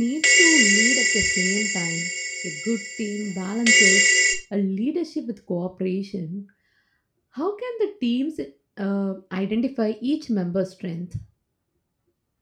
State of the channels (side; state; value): both; identical; correlation 1.00